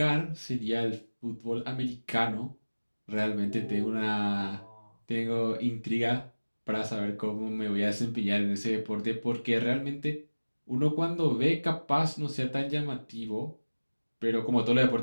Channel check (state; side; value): inverted; both; correlation -1.00